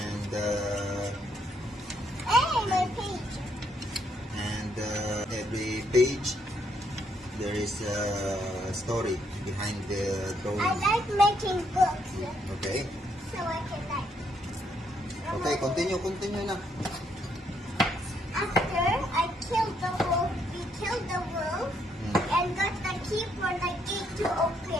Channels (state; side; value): normal; both; correlation 0.73